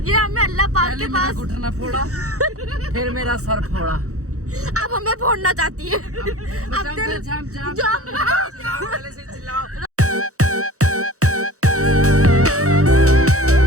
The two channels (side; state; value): left; late; 0.65 ms